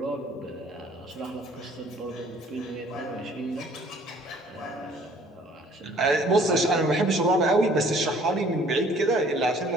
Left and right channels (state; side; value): normal; both; correlation 0.56